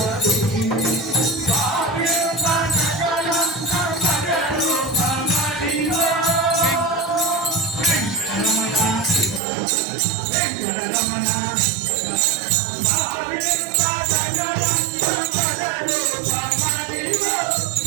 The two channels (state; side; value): drops out; left; at 9.4 s